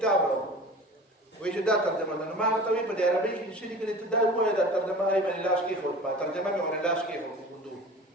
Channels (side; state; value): both; normal; correlation 0.39